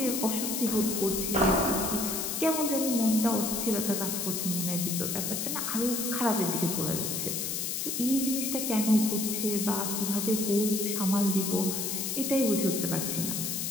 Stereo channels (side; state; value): left; noise; hiss, 2 dB below the sound